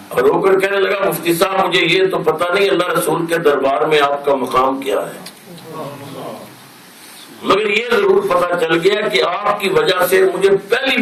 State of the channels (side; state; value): both; identical; correlation 1.00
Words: اور رو کر کہنے لگا مفتی صاحب مجھے یہ تو پتہ نہیں اللہ رسول کے دربار میں آپ کا مقام کیا ہے, مگر یہ ضرور پتہ چل گیا کہ آپ کی وجہ سے مجھے پہلی